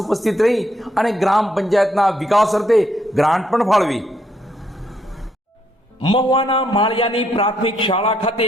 ઉપસ્થિત રહી અને ગ્રામ પંચાયતના વિકાસ અર્થે ગ્રાન્ટ પણ ફાળવી. મહુવાના માળિયાની પ્રાથમિક શાળા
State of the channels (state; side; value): normal; both; correlation 0.73